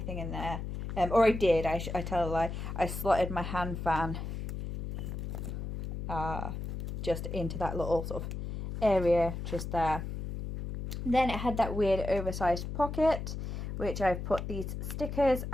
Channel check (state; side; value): noise; left; hum, 5 dB below the sound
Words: in there. Or I did, I tell a lie, I slotted my hand fan just into that little sort of area just there. Then it had that weird oversized pocket, which I've put these stickers